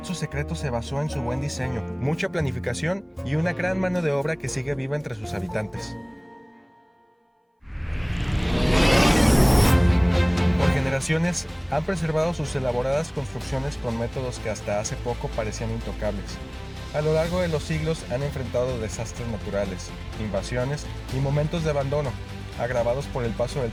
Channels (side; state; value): both; identical; correlation 1.00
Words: su secreto se basó en su buen diseño, mucha planificación y una gran mano de obra que sigue viva entre sus habitantes. Por generaciones han preservado sus elaboradas construcciones con métodos que hasta hace poco parecían intocables. A lo largo de los siglos han enfrentado desastres naturales, invasiones y momentos de abandono, agravados por el paso del